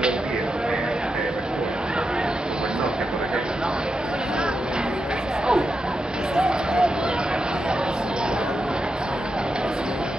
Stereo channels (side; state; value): both; normal; correlation 0.87